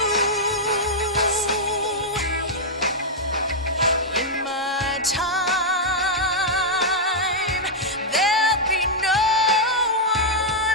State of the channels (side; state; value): both; normal; correlation -0.05